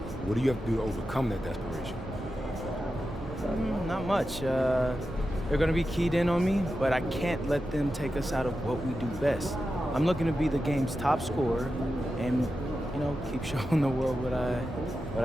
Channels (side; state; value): both; normal; correlation 0.91